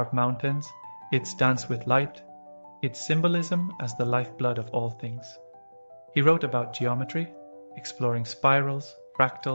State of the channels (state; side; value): inverted; both; correlation -1.00